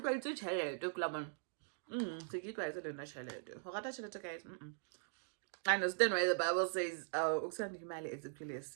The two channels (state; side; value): silent; left; digital silence